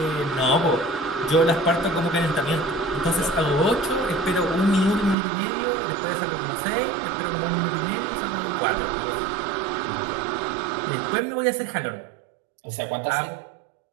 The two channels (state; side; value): drops out; left; at 5.2 s